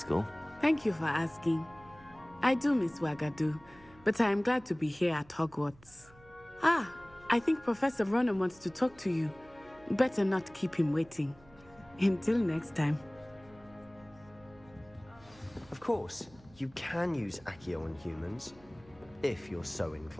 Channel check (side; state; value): right; noise; hum, 25 dB below the sound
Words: Thank you for asking. I do miss Wagadu, but I am glad to be here at Hogwarts. I think Professor Ronen wants to talk to you. Better not keep him waiting. Until next time. Of course, you can use Accio on humans, if you're so